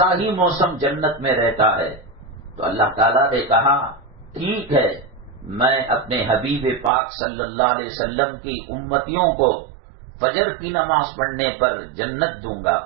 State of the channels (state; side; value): drops out; left; at 6.9 s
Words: ہی موسم جنت میں رہتا ہے۔ تو اللہ تعالیٰ نے کہا ٹھیک ہے، میں اپنے حبیب پاک صلی اللہ علیہ وسلم کی امتیوں کو فجر کی نماز پڑھنے پر جنت دوں گا۔